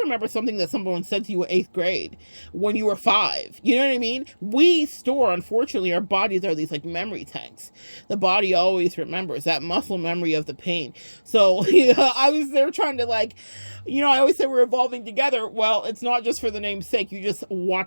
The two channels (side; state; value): both; inverted; correlation -1.00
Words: remember something that someone said to you in 8th grade when you were 5. You know what I mean? We store, unfortunately, our bodies are these like memory tanks. The body always remembers that muscle memory of the pain. So I was there trying to, like, you know, I always say we're evolving together. Well, it's not just for the name's sake. You just